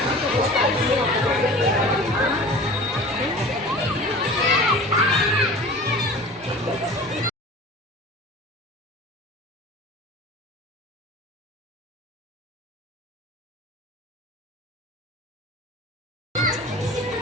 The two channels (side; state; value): both; normal; correlation 0.39